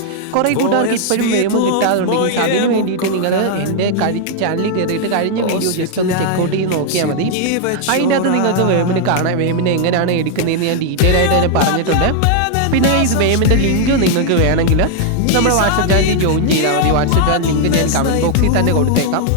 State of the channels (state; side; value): different; both; correlation 0.00